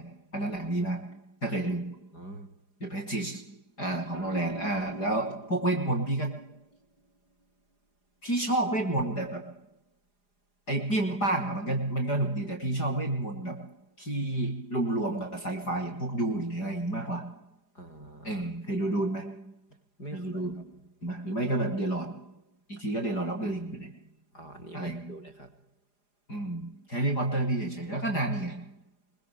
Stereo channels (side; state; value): right; late; 4.9 ms